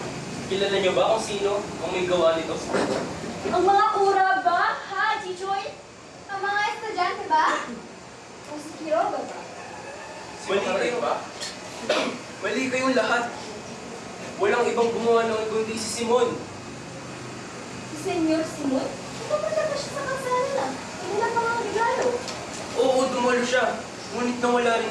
Kilala niyo ba kung sino ang may gawa nito? Ang mga kura ba, ha, Chichoy? Ang mga estudyante ba? O si Quiroga ba? Mali kayo ba? Mali kayong lahat. Walang ibang gumawa noon kundi si Simon. Si Senyor Simon? Ito pa siya sa kasalanan. Hindi na pa mga regalo. Oo, dumalo siya. Ngunit nawala rin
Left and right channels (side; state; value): both; identical; correlation 1.00